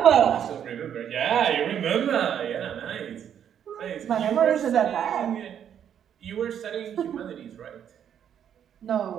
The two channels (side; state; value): left; quieter; 9.1 dB